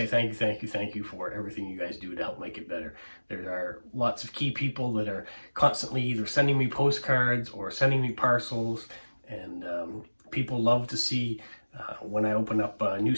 thank you for everything you guys do to help make it better. There are lots of key people that are constantly either sending me postcards or sending me parcels, and people love to see when I open up new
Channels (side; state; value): both; inverted; correlation -1.00